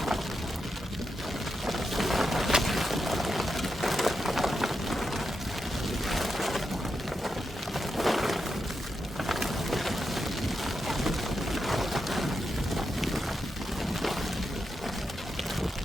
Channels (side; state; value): both; normal; correlation 0.86